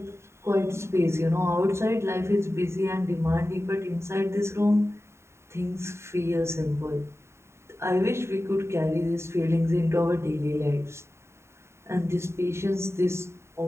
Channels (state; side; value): late; left; 0.13 ms